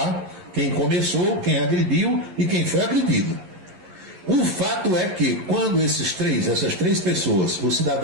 quem começou, quem agrediu e quem foi agredido. O fato é que quando essas três pessoas, o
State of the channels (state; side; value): late; left; 11 ms